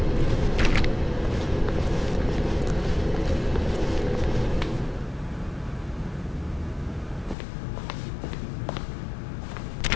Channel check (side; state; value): right; drops out; at 7.4 s